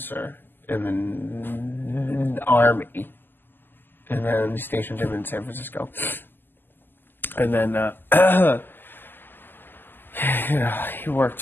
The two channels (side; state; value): right; late; 0.093 ms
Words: in the Army. And then he stationed him in San Francisco. And then he worked